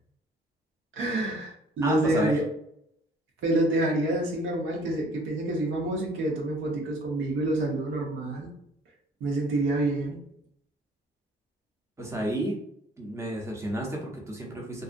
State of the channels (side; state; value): both; normal; correlation 0.56